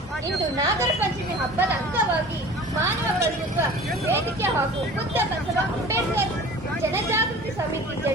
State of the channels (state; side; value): normal; both; correlation 0.42